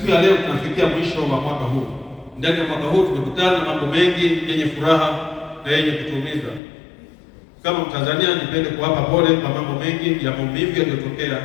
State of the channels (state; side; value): drops out; right; at 6.6 s